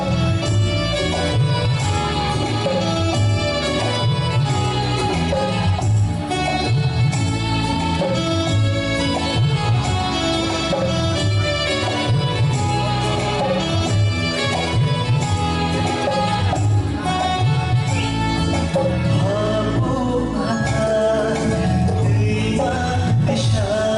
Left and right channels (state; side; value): identical; both; correlation 1.00